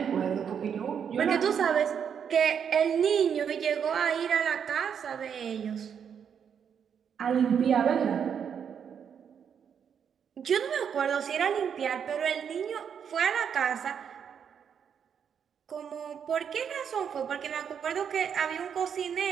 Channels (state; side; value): quieter; left; 7.7 dB